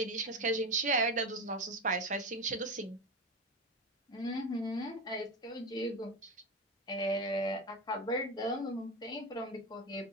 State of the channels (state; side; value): normal; both; correlation 0.20